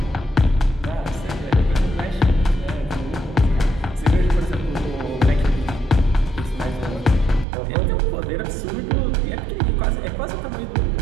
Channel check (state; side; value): drops out; left; at 7.5 s